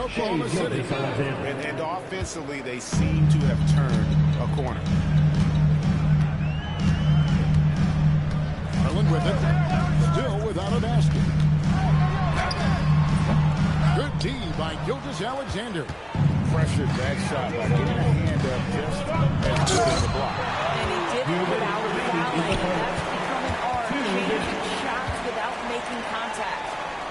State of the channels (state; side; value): identical; both; correlation 1.00